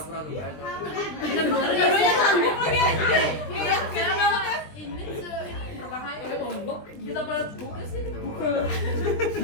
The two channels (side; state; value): right; late; 20 ms